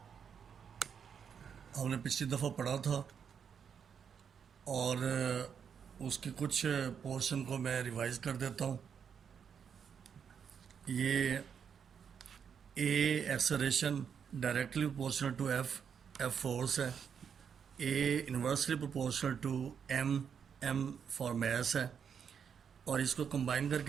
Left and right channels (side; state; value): left; quieter; 7.2 dB